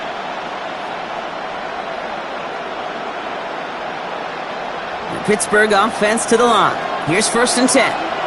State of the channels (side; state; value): both; identical; correlation 1.00